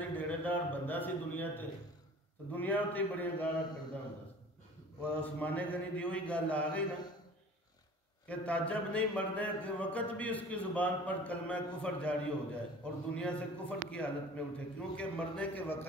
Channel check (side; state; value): both; normal; correlation 0.45